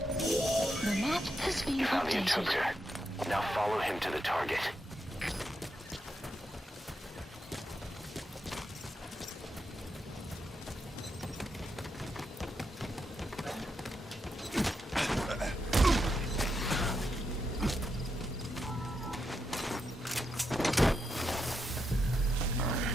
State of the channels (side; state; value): both; normal; correlation 0.84